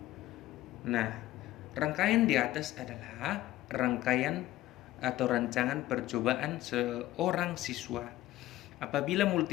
Nah, rangkaian di atas adalah rangkaian atau rancangan percobaan seorang siswa apabila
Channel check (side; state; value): right; quieter; 15.7 dB